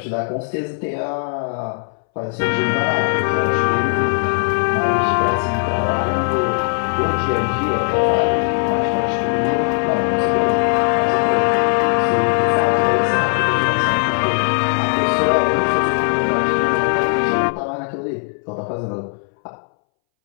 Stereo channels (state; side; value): silent; right; 64 dB below the other